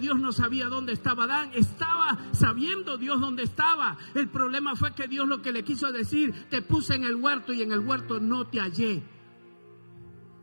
no sabía dónde estaba Adán? Estaba sabiendo Dios dónde estaba. El problema fue que Dios lo que le quiso decir, te puse en el huerto y en el huerto no te hallé.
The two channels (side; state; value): both; inverted; correlation -1.00